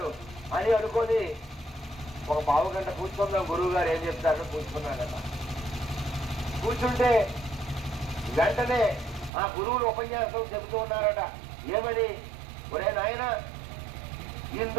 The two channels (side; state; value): left; drops out; at 9.3 s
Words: అని అనుకొని ఒక పావు గంట కూర్చుందాం, గురువు గారు ఏం చెప్తారని కూర్చున్నాడట. కూర్చుంటే వెంటనే ఆ గురువులు ఉపన్యాసం చెబుతూ ఉన్నారట. ఏమని? ఒరే నాయన,